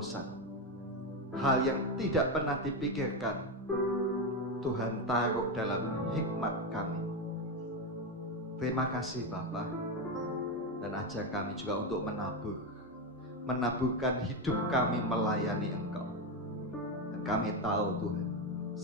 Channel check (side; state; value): both; normal; correlation 0.11